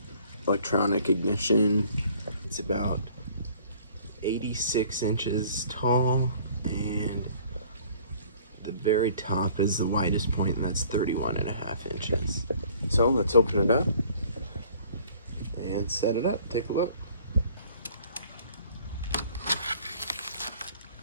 Electronic ignition. It's about 86 inches tall, and the very top is the widest point, and that's 31.5 inches. So let's open it up and set it up. Take a look.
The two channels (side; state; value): both; inverted; correlation -0.54